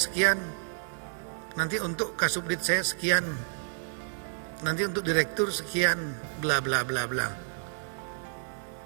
nanti untuk Kasubdit saya sekian, nanti untuk direktur sekian, bla bla bla bla.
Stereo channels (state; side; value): silent; left; digital silence